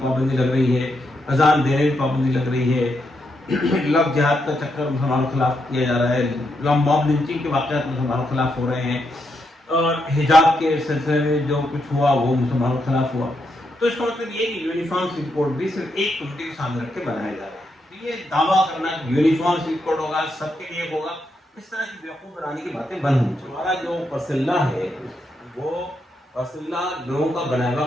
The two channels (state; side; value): normal; both; correlation 0.81